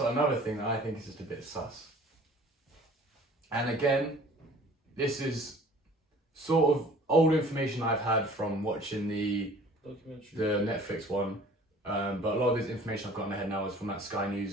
thing that I think is just a bit sus. And again, this is sort of old information I've had from watching the Netflix one, but a lot of this information I've got in my head now is from that Sky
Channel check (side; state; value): both; normal; correlation 0.50